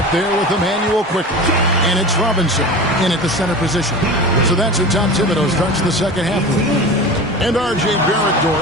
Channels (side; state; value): both; normal; correlation 0.32